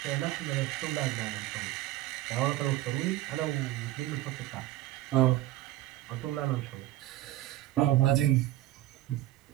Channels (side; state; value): left; quieter; 15.1 dB